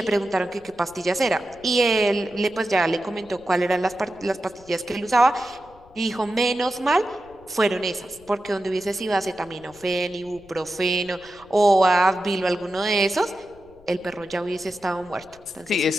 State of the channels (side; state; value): left; noise; rumble, 26 dB below the sound